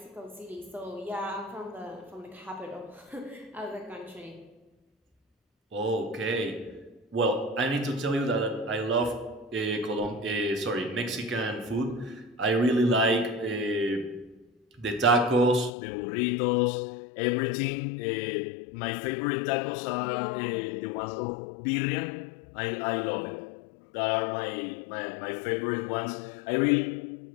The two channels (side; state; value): right; drops out; at 15.7 s